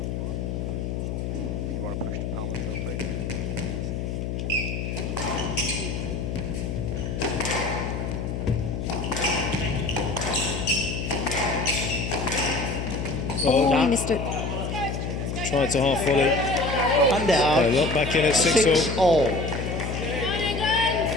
You want to push the palm into the plate? Oh, Well, he missed it. tried to half volley. And out. Look back in at 6-all. 6-all.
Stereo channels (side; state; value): left; noise; hum, 3 dB below the sound